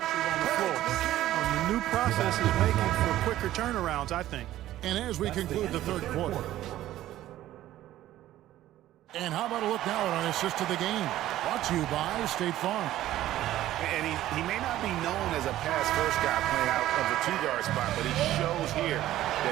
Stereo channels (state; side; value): quieter; left; 14.0 dB